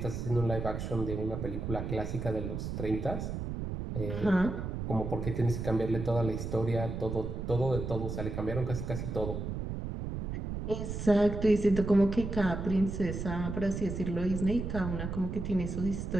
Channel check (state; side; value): noise; right; rumble, 5 dB below the sound